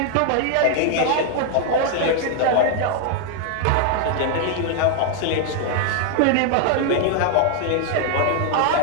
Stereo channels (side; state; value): both; different; correlation 0.00